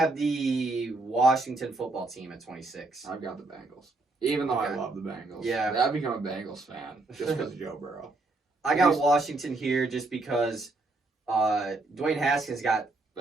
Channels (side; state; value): left; quieter; 3.1 dB